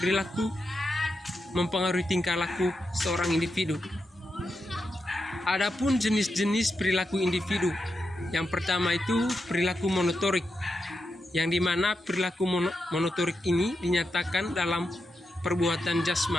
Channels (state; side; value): normal; both; correlation 0.87